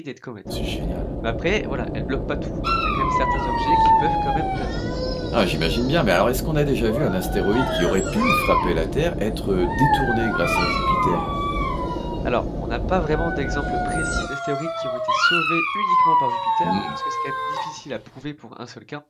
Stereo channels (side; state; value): both; identical; correlation 1.00